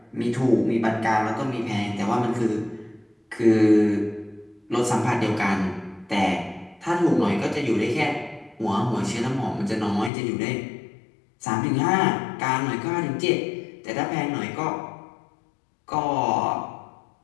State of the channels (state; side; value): drops out; right; at 10.1 s